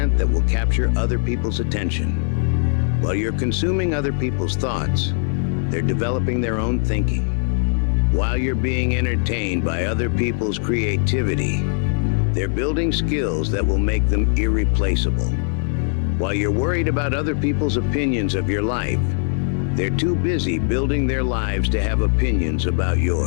that will capture other people's attention. While you're consuming other people's thoughts, they're developing their own thinking. While you're being entertained by other people's creativity, they're building skills that will make them irreplaceable. While you're worried about other people's opinions of your life, they're too busy building their lives to have opinions about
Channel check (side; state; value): right; silent; 65 dB below the other